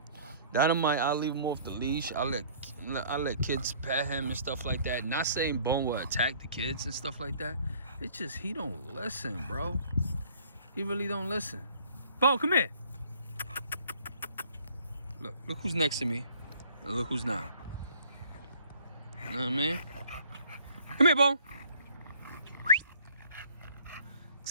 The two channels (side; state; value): both; inverted; correlation -0.56